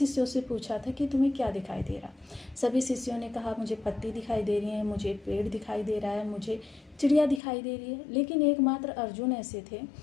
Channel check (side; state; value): right; drops out; at 7.4 s